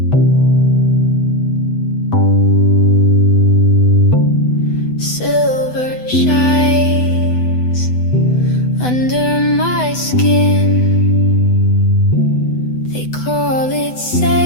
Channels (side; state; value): right; late; 8.0 ms